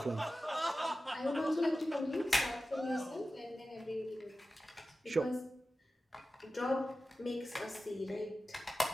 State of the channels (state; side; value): normal; both; correlation 0.94